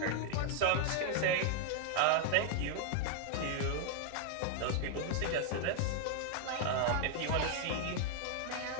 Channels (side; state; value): both; different; correlation 0.00